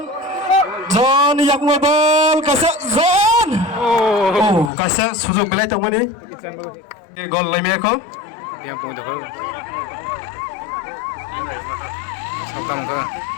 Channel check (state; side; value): drops out; right; at 4.7 s